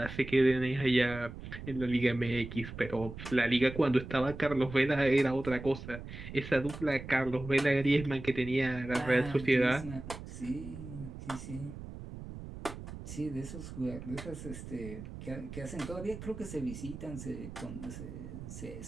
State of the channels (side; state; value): right; noise; rumble, 11 dB below the sound